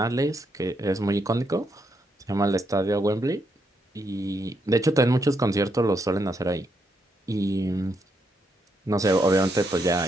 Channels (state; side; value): normal; both; correlation 0.78